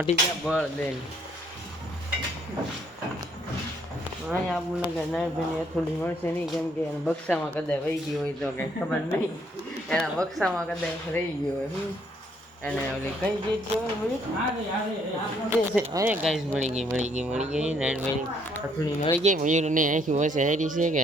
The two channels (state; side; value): normal; both; correlation 0.67